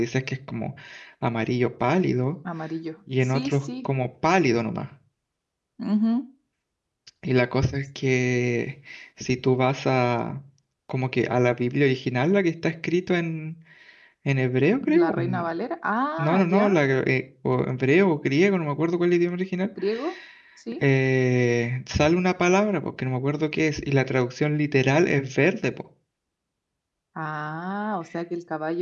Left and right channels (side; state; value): both; identical; correlation 1.00